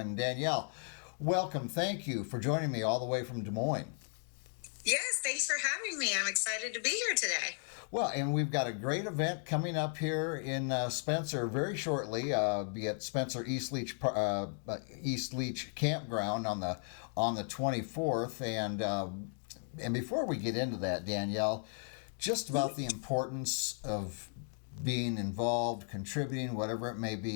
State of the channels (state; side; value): silent; right; 54 dB below the other